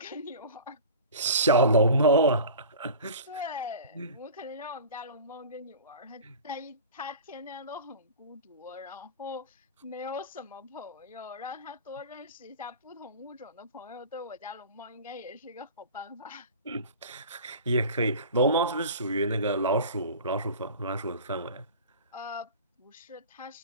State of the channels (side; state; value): both; inverted; correlation -0.37